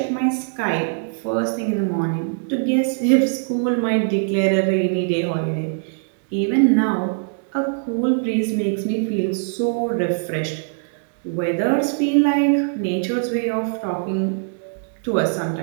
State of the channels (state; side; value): silent; left; digital silence